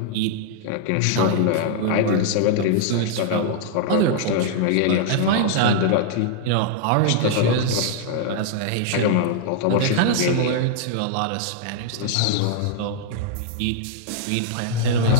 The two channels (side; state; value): both; different; correlation -0.01